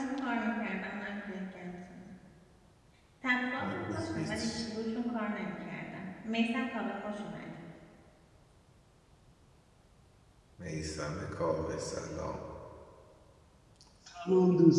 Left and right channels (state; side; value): identical; both; correlation 1.00